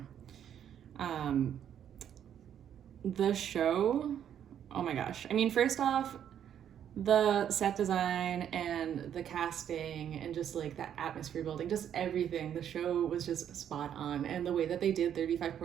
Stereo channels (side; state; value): left; quieter; 9.5 dB